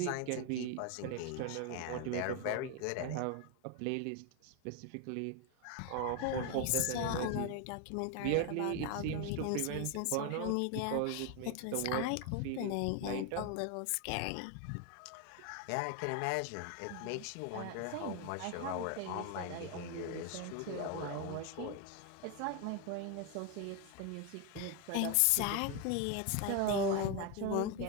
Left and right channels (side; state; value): both; different; correlation 0.01